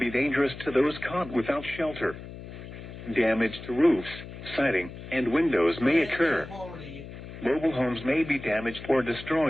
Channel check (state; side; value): noise; left; hum, 13 dB below the sound